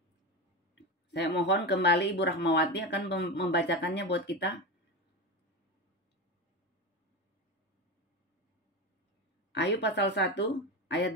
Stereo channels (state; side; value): normal; both; correlation 0.20